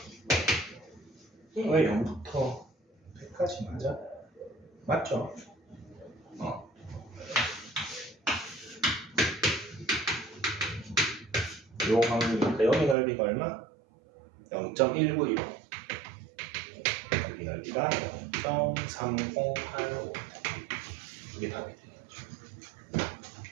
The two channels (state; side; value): drops out; left; at 13.0 s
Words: 왜 0부터 100까지 맞아? 맞죠? 요 확률이니까 여기 넓이가 얼마? 0.195 여기 넓이가 0.3085 이게 답이 되겠죠.